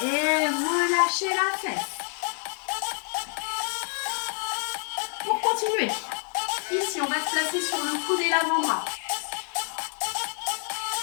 Et relâchez la fesse. Pour continuer, ici on va se placer sur le coude et l'avant-bras.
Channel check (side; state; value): right; quieter; 37.5 dB